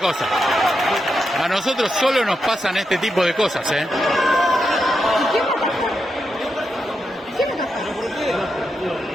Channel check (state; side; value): normal; both; correlation 0.85